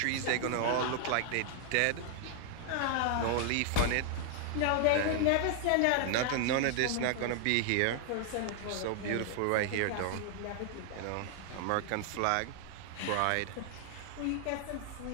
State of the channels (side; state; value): both; different; correlation 0.00